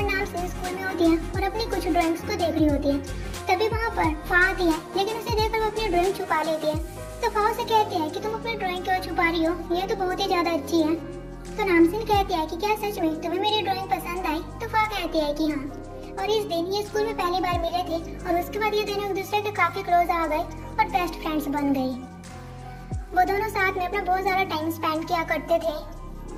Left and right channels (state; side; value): identical; both; correlation 1.00